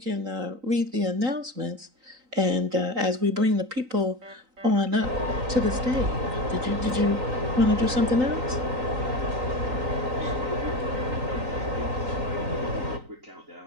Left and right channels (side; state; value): left; late; 3.9 ms